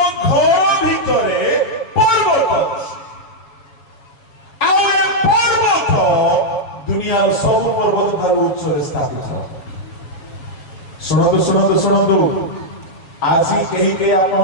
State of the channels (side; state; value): right; late; 7.2 ms